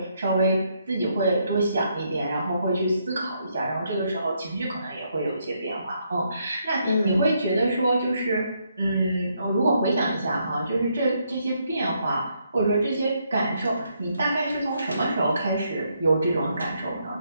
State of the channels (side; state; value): both; inverted; correlation -0.75